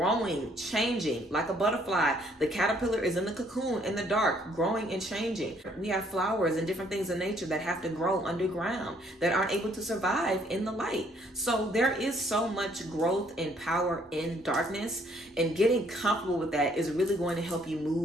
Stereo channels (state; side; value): normal; both; correlation 0.65